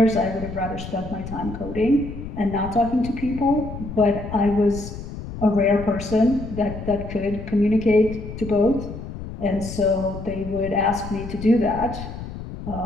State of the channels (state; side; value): noise; left; rumble, 10 dB below the sound